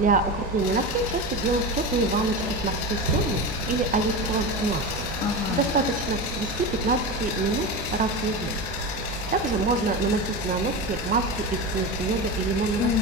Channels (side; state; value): both; normal; correlation 0.23